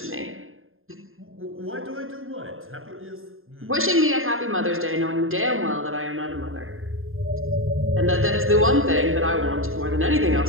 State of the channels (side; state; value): left; late; 0.60 ms